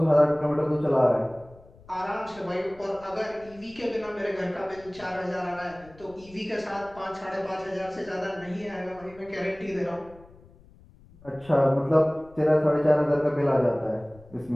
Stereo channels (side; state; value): left; noise; rumble, 24 dB below the sound